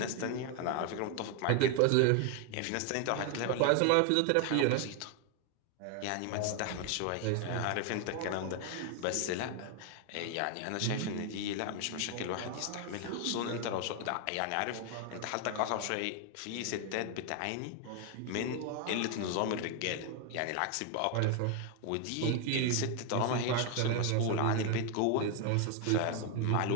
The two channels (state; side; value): different; both; correlation 0.01